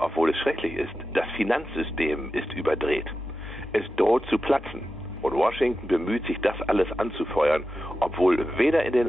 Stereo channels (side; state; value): both; normal; correlation 0.92